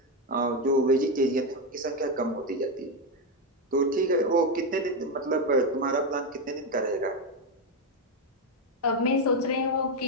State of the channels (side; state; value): both; normal; correlation 0.08